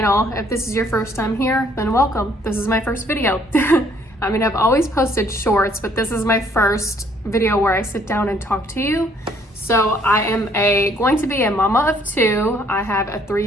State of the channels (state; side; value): normal; both; correlation 0.63